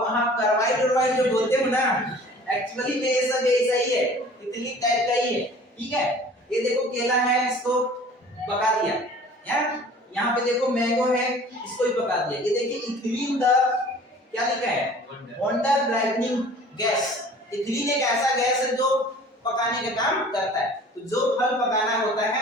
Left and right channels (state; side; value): normal; both; correlation 0.47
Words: कार्बाइड जो बोलते हो ना, एक्चुअली में ये सब ऐसा ही है, इथिलीन टाइप का ही है, ठीक है। ये देखो केला है, इसको पका दिया, यहाँ पे देखो मैंगो है, इसको भी पका दिया, ये देखिए इथिलीन द क्या लिखा है, वंडर ब्राइटनिंग गैस। इथिलीन एक ऐसा गैस है जो पकाने का काम करता है, तो जो फल पकाना होता